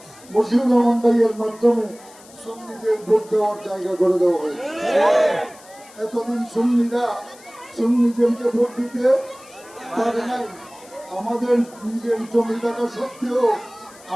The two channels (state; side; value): noise; left; hiss, 23 dB below the sound